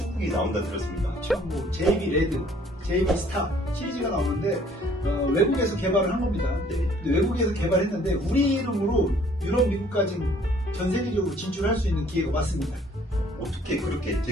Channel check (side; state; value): both; normal; correlation 0.59